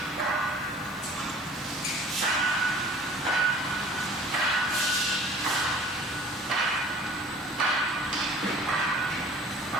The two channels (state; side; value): normal; both; correlation 0.48